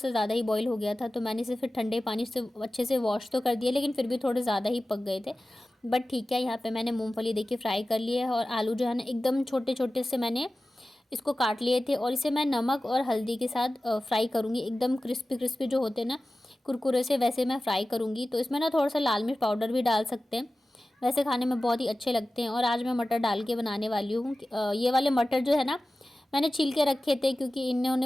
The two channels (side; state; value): both; normal; correlation 0.95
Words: ज़्यादा ही बॉईल हो गया था। तो मैंने इसे फिर ठंडे पानी से अच्छे से वॉश तो कर दिया, लेकिन फिर भी थोड़े ज़्यादा ही पक गए थे। बट ठीक है, यहाँ पे मैंने मूंगफली देखिए फ्राई कर लिया है, और आलू जो है ना एकदम छोटे छोटे से मैंने इसको काट लिए थे, और इसे मैं नमक और हल्दी के साथ फ्राई करूँगी। एकदम क्रिस्पी क्रिस्पी जो होते हैं ना कुरकुरे से, वैसे मैं फ्राई करूँगी। तो इसमें ना थोड़ा सा लाल मिर्च पाउडर भी डाल सकते हैं, वैसे खाने में बहुत ही अच्छे लगते हैं। और आज मैं मटर डाल के बनाने वाली हूँ। ये वाले मटर जो है ना मैंने छील के रखे थे, क्योंकि